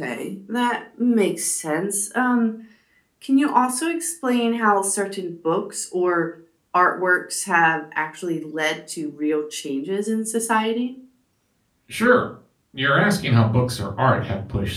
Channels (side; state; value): both; identical; correlation 1.00